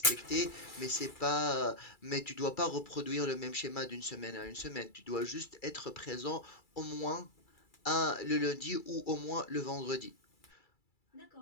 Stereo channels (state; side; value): late; right; 2.3 ms